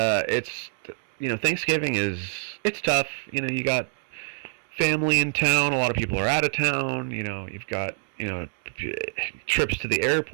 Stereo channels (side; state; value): left; silent; 61 dB below the other